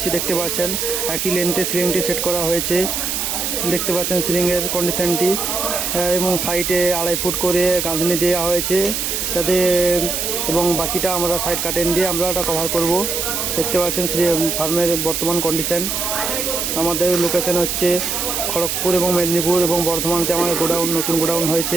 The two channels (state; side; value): noise; right; hiss, 1 dB below the sound